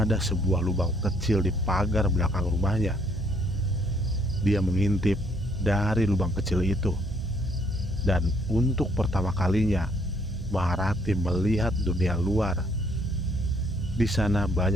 sebuah lubang kecil di pagar belakang rumahnya. Dia mengintip dari lubang kecil itu, dan untuk pertama kalinya Maharati melihat dunia luar. Di sana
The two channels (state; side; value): normal; both; correlation 0.67